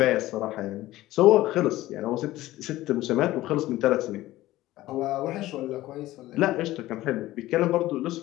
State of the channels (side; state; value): right; quieter; 16.3 dB